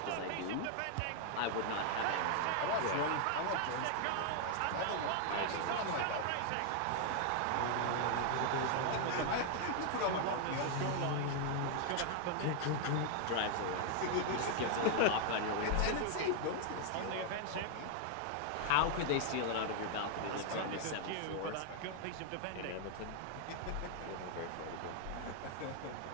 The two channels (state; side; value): different; both; correlation 0.00